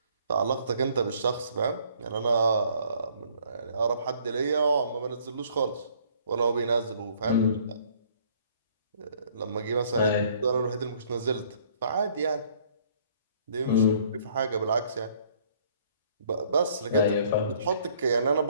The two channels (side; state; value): both; inverted; correlation -0.60